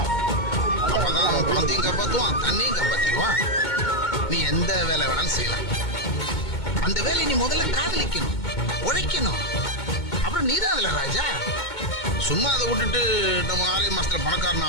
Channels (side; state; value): right; late; 2.2 ms